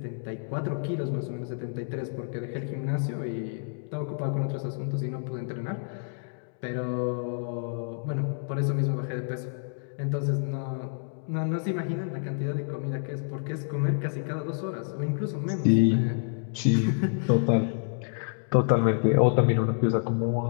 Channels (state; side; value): silent; right; digital silence